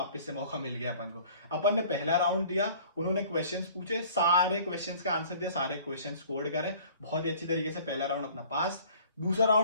से मौका मिल गया अपन को। अपन ने पहला राउंड दिया, उन्होंने क्वेश्चंस पूछे, सारे क्वेश्चंस का आंसर दिया, सारे क्वेश्चंस स्कोर करे बहुत ही अच्छी तरीके से, पहला राउंड अपना पास। दूसरा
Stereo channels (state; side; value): inverted; both; correlation -0.49